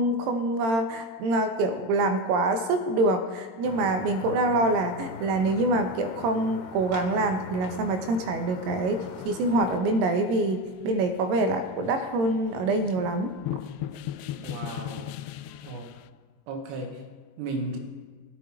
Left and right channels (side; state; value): left; late; 22 ms